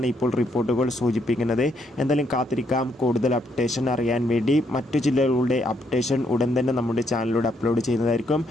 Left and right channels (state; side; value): normal; both; correlation 0.74